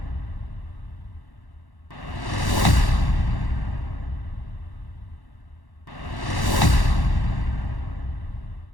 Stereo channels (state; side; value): late; right; 1.1 ms